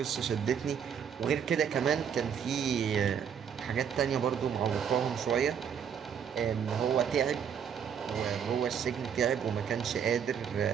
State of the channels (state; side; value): quieter; left; 7.8 dB